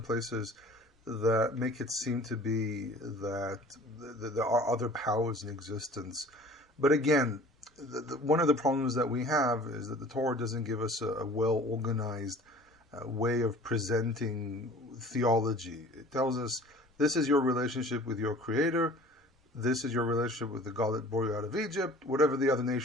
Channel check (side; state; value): both; normal; correlation 0.46